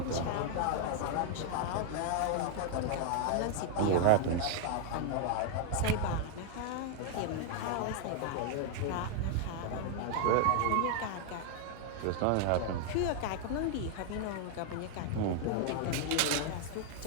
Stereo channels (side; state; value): both; different; correlation 0.00